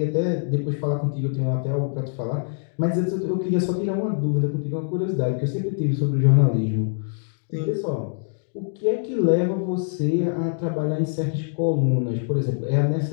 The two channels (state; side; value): silent; right; digital silence